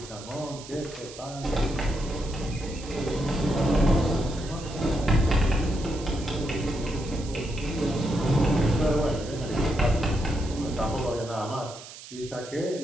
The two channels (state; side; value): noise; right; hiss, 15 dB below the sound